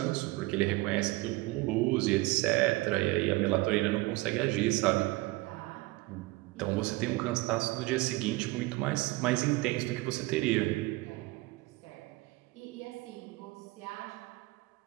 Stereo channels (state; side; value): quieter; left; 21.3 dB